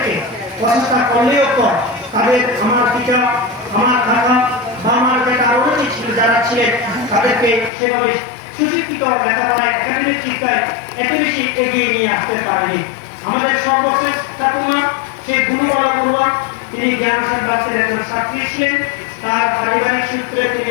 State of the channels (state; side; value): drops out; right; at 7.7 s